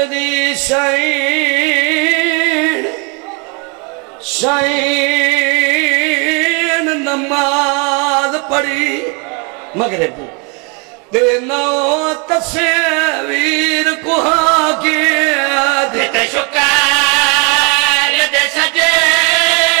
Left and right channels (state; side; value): quieter; left; 32.2 dB